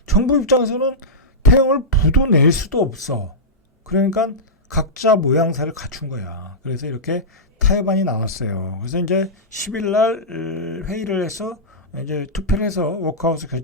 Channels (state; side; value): normal; both; correlation -0.12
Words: 정부 입장에서는 태영을 부도낼 수도 없어. 그러니까 각자 모양새를 갖춘 거야. 그래서 이렇게 타협안이 나왔어요. 그래서 이제 10일 날 회의를 해서 이제 투표를 해서 워크아웃을